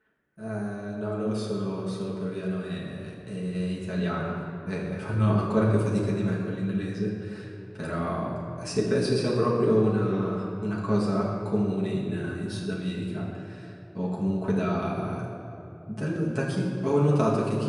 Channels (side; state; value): both; identical; correlation 1.00